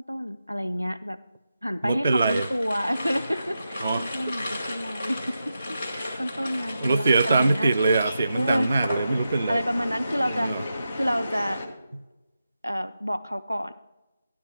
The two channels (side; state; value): both; inverted; correlation -0.89